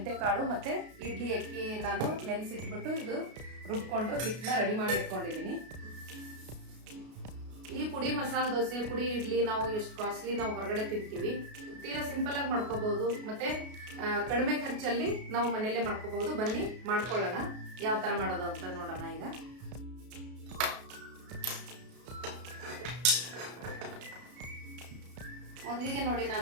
ಮತ್ತೆ ಇಡ್ಲಿ ಅಕ್ಕಿ ನಾನು ನೆನೆಸಿಟ್ಬಿಟ್ಟು ಇದು ರುಬ್ಕೊಂಡು ಹಿಟ್ಟನ್ನ ರೆಡಿ ಮಾಡಿ ಇಟ್ಕೊಂಡಿದ್ದೀನಿ. ಈ ಪುಡಿ ಮಸಾಲೆ ದೋಸೆ, ಪುಡಿ ಇಡ್ಲಿ ನಾವು ಎಷ್ಟು ಕಾಸ್ಟ್ಲಿ ನಾವು ಹೊರಗಡೆ ತಿಂತೀವಿ. ತೀರಾ ಸಿಂಪಲ್ ಆಗಿ ಮಾಡ್ಕೋಬಹುದು, ಮತ್ತೆ ಕಡಿಮೆ ಖರ್ಚಲ್ಲಿ ನಾವು ಮನೆಯಲ್ಲೇ ಮಾಡ್ಕೋಬಹುದು. ಬನ್ನಿ ಮಾಡ್ಕೊಳ್ಳೋಣ, ಯಾವ ತರ ಮಾಡೋದು ಅಂತ ನೋಡೋಣ. ಈಗ ಮೊದಲಿಗೆ ನೋಡಿ,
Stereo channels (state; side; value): late; left; 33 ms